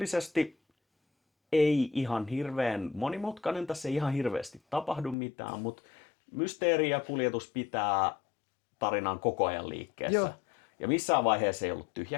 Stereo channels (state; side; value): drops out; right; at 5.2 s